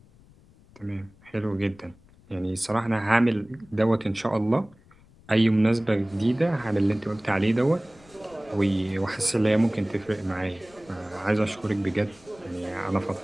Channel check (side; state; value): left; noise; rumble, 27 dB below the sound